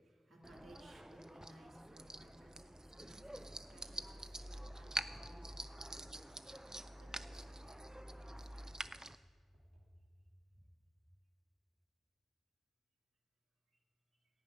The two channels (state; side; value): normal; both; correlation 0.84